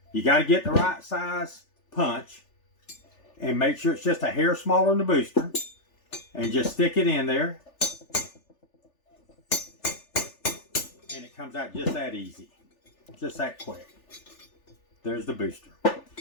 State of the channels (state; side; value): late; right; 3.4 ms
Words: You got to get the right size punch and make sure it's just a hair smaller than the booster, and just stick it in there, and it comes out just that easy, just that quick. There's the booster.